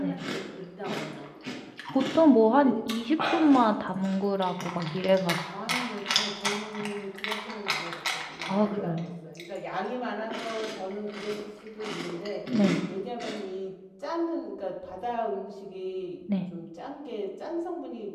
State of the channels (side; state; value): both; identical; correlation 1.00